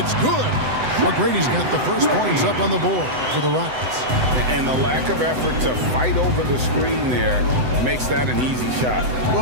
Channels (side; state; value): left; late; 7.9 ms